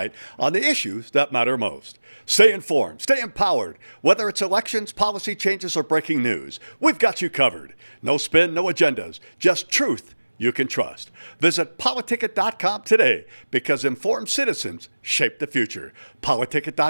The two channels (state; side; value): inverted; both; correlation -1.00